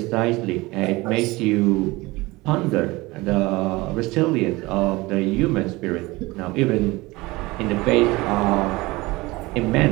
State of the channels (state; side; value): quieter; left; 21.6 dB